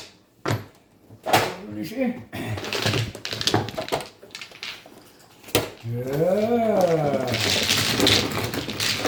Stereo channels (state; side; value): identical; both; correlation 1.00